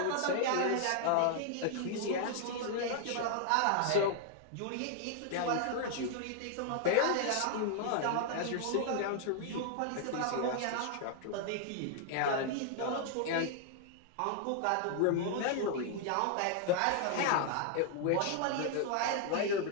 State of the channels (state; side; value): different; both; correlation 0.00